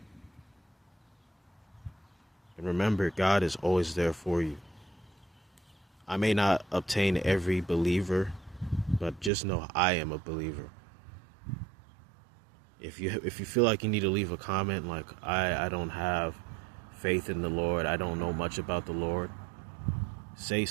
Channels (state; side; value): drops out; left; at 9.3 s